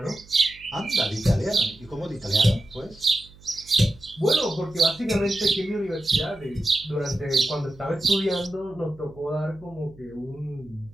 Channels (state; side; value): noise; right; hum, 23 dB below the sound